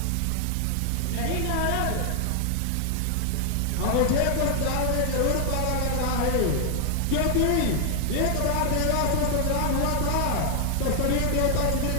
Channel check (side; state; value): both; different; correlation 0.00